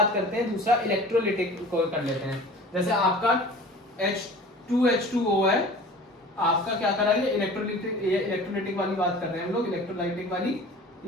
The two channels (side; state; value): both; normal; correlation 0.42